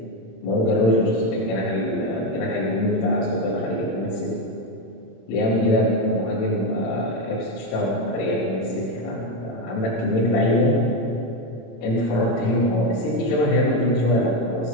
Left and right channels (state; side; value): late; right; 27 ms